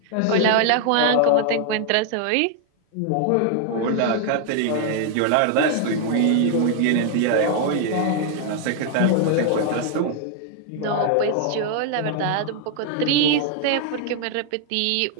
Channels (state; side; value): different; both; correlation 0.00